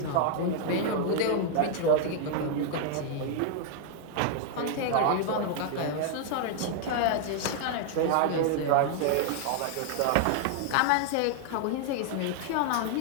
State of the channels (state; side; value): different; both; correlation 0.00